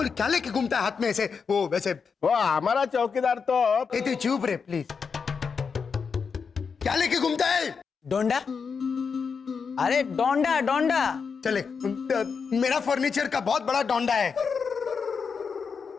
क्या लेके घूमता है हाथ में ऐसे? वो वैसे वो हमारा चौकीदार तो ए तू चुप रे प्लीज। क्या लेके घूमता है? डोंडा। अरे डोंडा डोंडा। चले, मेरा फर्नीचर का बहुत बड़ा डोंडा है।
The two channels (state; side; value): quieter; right; 5.7 dB